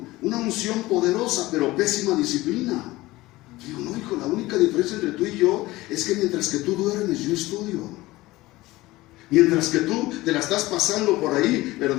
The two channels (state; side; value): quieter; right; 18.9 dB